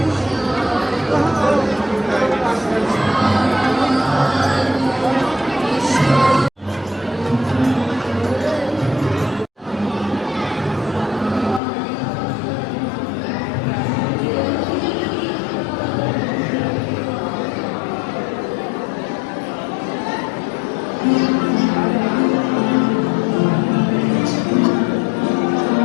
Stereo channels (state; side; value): drops out; right; at 11.6 s